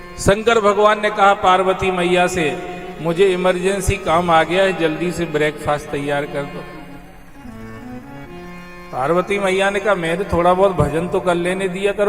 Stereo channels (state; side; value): identical; both; correlation 1.00